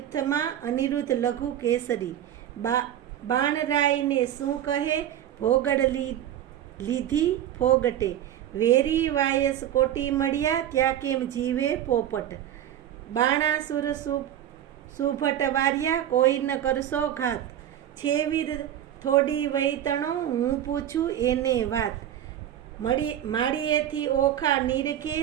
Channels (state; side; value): quieter; left; 11.2 dB